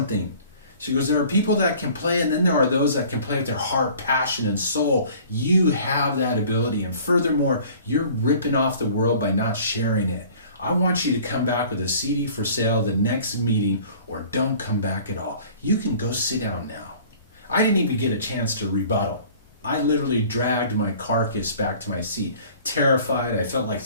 She goes, there are people that can play, and then there are those that can play with their heart, passion, and soul. You have that ability. And furthermore, you're ripping off the world by not sharing it. I want you to come back with a CD for sale the next meeting, or don't come back at all. You can go sit down now. I didn't even get a chance to rebuttal. I literally dragged my carcass back to my seat, terrified. I felt like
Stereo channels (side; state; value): both; inverted; correlation -0.49